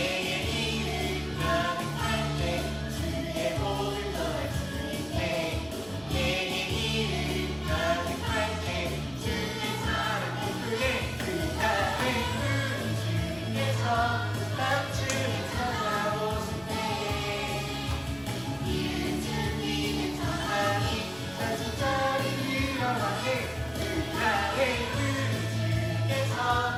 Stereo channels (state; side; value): noise; right; hum, 23 dB below the sound